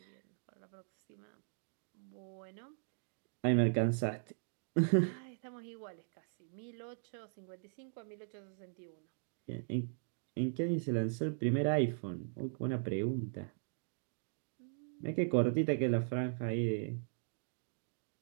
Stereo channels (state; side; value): silent; left; digital silence